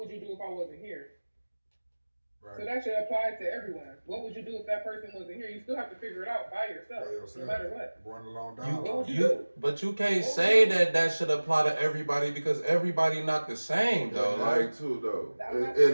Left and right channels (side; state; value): both; inverted; correlation -1.00